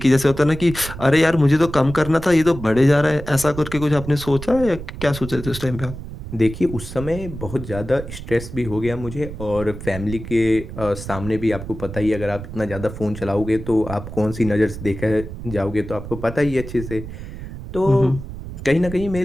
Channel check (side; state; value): right; noise; rumble, 10 dB below the sound